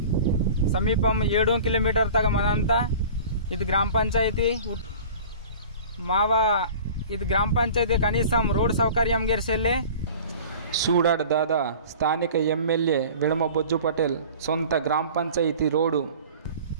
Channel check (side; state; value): both; inverted; correlation -0.42